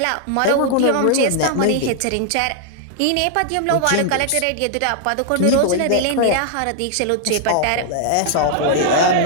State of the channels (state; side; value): different; both; correlation 0.00